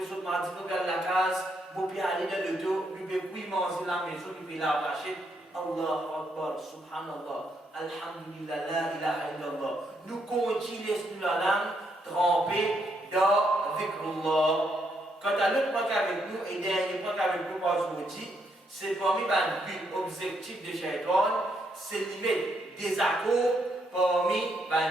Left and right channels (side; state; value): both; normal; correlation 0.76